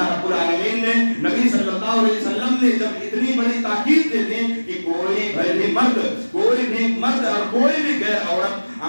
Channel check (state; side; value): inverted; both; correlation -1.00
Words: رب العالمین نے، نبی صلی اللہ علیہ وسلم نے جب اتنی بڑی تاکید دے دی کہ کوئی بھی مرد اور کوئی بھی غیر عورت